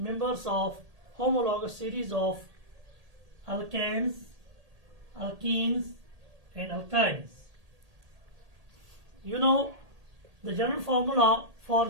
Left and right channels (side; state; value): left; late; 1.8 ms